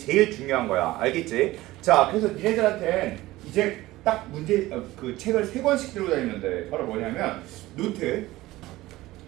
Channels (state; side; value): quieter; left; 17.7 dB